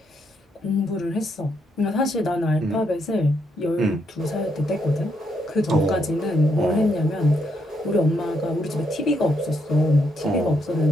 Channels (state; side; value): normal; both; correlation 0.77